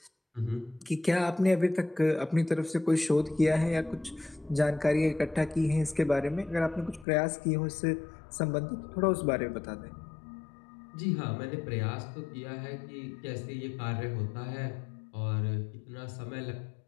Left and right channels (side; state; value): right; drops out; at 7.1 s